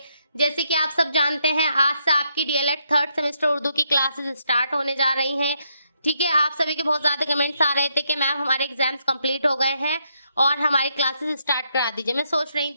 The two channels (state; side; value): inverted; both; correlation -0.77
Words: जैसे कि आप सब जानते हैं, आज से आपकी डीएलएड थर्ड सेमेस्टर उर्दू की क्लासेस स्टार्ट होने जा रही हैं। ठीक है, आप सभी के बहुत ज़्यादा कमेंट्स आ रहे थे कि मैम हमारे एग्जाम्स कंप्लीट हो गए हैं और हमारी क्लासेस स्टार्ट करा दीजिए। मैं सोच रही